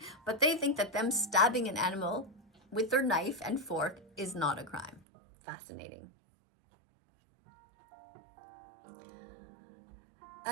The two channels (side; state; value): left; drops out; at 5.0 s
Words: But they think that them stabbing an animal with their knife and fork is not a crime. Fascinating.